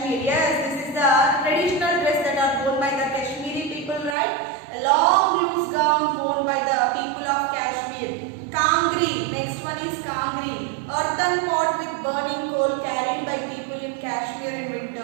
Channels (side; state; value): left; drops out; at 4.2 s